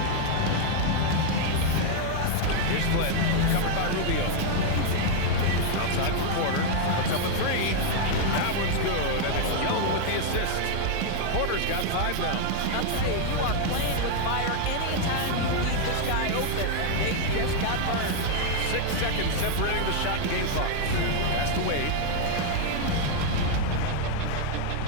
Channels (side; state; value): both; different; correlation 0.00